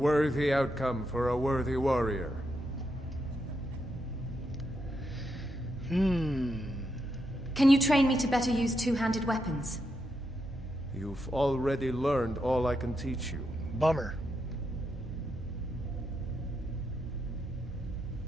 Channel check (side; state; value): both; normal; correlation 0.83